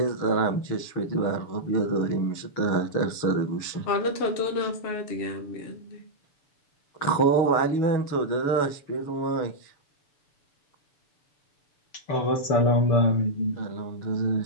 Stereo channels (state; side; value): late; right; 6.9 ms